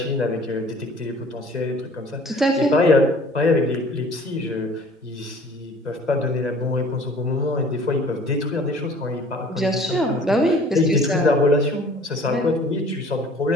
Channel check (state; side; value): normal; both; correlation 0.50